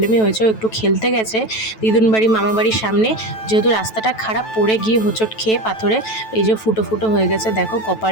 হয়েছে। ও একটু খেলতে গেছে দিদুন বাড়ি মামা বাড়ির সামনে, যেহেতু রাস্তাটা খারাপ, পড়ে গিয়ে হোঁচট খেয়ে পাথরে এই যে ফুটো ফুটো হয়ে গেছে, দেখো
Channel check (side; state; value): right; late; 9.1 ms